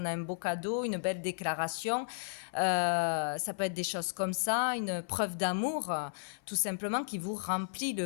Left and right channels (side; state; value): right; silent; 55 dB below the other